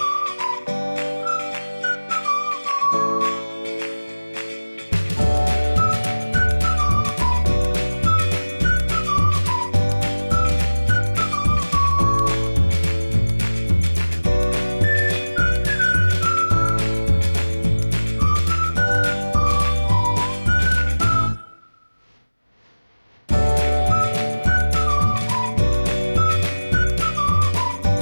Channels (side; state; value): both; inverted; correlation -1.00